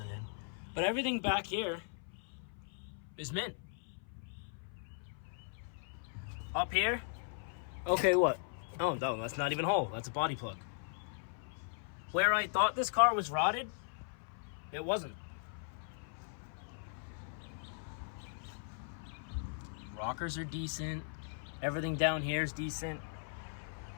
in. But everything back here is mint. Up here, okay, what? Oh, no, that's not even a hole. That's a body plug. Where I thought this car was rotted, it wasn't. Rockers are decent. Everything down here is decent.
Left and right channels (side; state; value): right; silent; 52 dB below the other